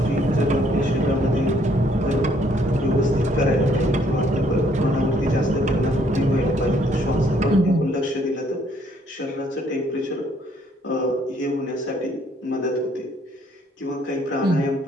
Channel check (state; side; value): normal; both; correlation 0.66